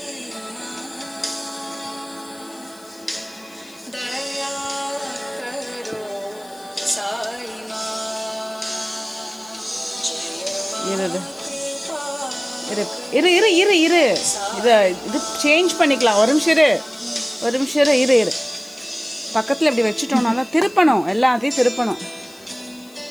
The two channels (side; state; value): left; noise; hiss, 26 dB below the sound